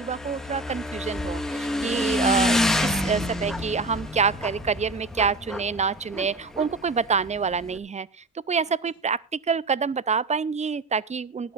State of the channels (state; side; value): quieter; left; 3.0 dB